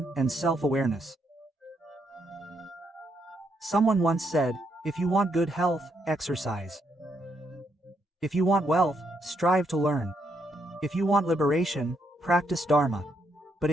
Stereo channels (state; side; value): normal; both; correlation 0.76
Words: and self-awareness. Someone once said, if you want good health, exercise. If you want wealth, strive to learn. If you want liberation, practice Dharma. But